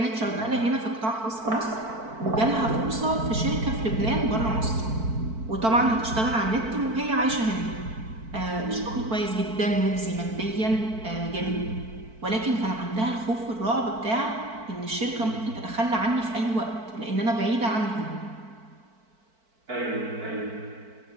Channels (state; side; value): late; left; 4.5 ms